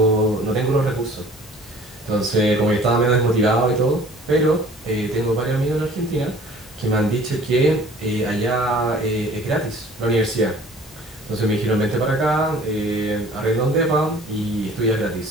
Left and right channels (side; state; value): both; normal; correlation 0.50